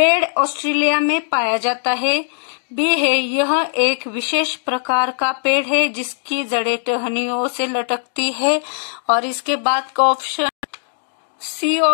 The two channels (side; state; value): right; silent; digital silence